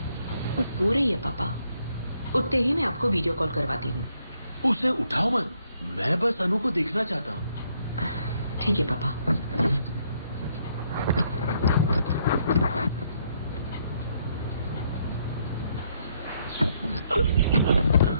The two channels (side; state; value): both; inverted; correlation -0.72